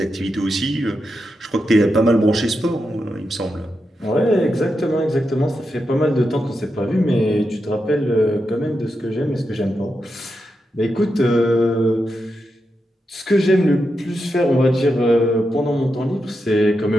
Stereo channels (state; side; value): normal; both; correlation 0.87